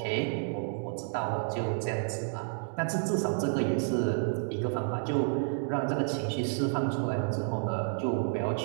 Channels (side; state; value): left; silent; digital silence